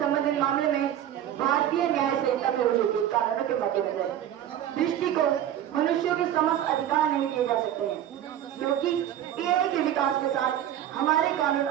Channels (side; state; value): left; quieter; 11.1 dB